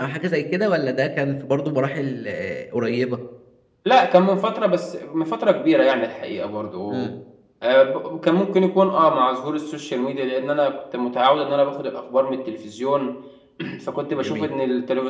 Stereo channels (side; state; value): both; identical; correlation 1.00